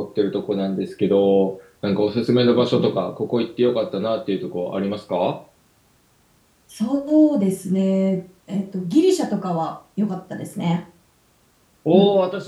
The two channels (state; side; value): identical; both; correlation 1.00